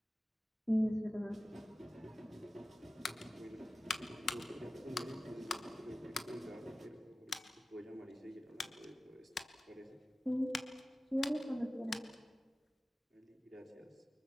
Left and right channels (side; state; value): both; normal; correlation 0.96